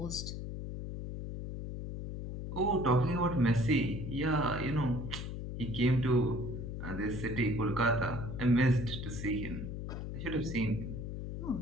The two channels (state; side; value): noise; left; hum, 6 dB below the sound